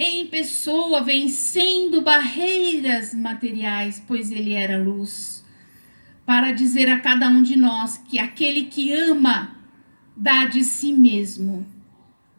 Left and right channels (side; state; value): both; inverted; correlation -1.00